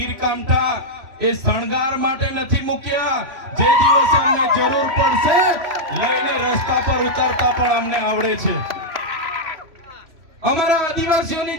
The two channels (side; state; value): left; late; 3.1 ms